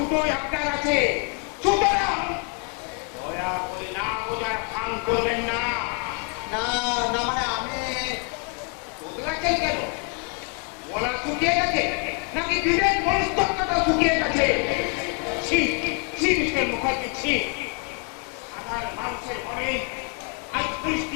আপনার আছে। সুতরাং দয়া করে না বোঝার ভান করবেন না। না না মানে আমি বদলাচ্ছেন কেন? গলা শুকিয়ে গেছে নাকি বিবেক মনস্তত্ত্বটা শুকিয়ে গেছে? ছি ছি মিস্টার মুখার্জি, ছি। সাধারণ মানুষের মনে আজ পুলিশ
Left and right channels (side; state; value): right; quieter; 32.2 dB